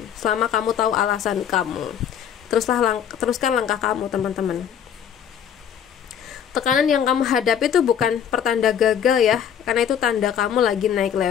selama kamu tahu alasan kamu. Teruskan langkah kamu, teman-teman. Tekanan yang kamu hadapi itu bukan pertanda gagal ya, karena itu tanda kamu lagi naik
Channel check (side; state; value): right; quieter; 8.7 dB